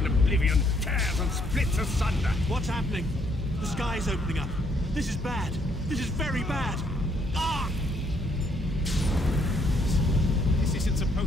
Oblivion tears and splits asunder. What's happening? The sky's opening up. This is bad. This is very bad. Ah! This isn't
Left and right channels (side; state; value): both; normal; correlation 0.70